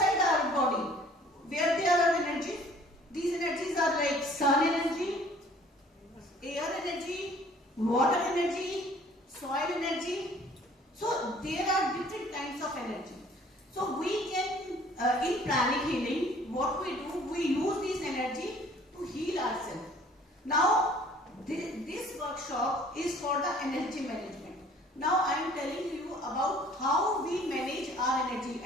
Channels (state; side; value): normal; both; correlation 0.54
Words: our body. Where there are energy? These energies are like sun energy, air energy, water energy, soil energy. So there are different kinds of energy. So we can, in pranic healing, what we do, we use this energy to heal ourselves. Now, this workshop is for the energy management. Now I am telling you about how we manage our energy